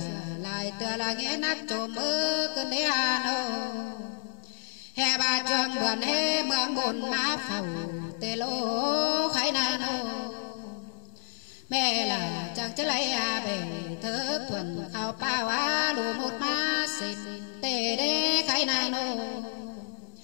lại tựa là nghe nát trộm mơ cơn đế hà nô hè bà trường buồn hê mương buồn má phầu tê lô khái nai nô mẹ là chẳng chất lấy à bể thơ thuần khao bao á lù một má xịt tê đế khái nai nô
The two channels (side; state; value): right; silent; digital silence